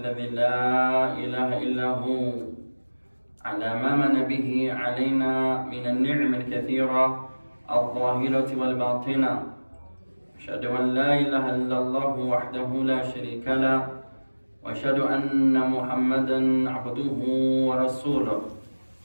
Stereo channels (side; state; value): both; inverted; correlation -1.00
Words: لا إله إلا هو على ما من به علينا من النعم الكثيرة الظاهرة والباطنة. أشهد أن لا إله إلا الله وحده لا شريك له وأشهد أن محمدا عبده ورسوله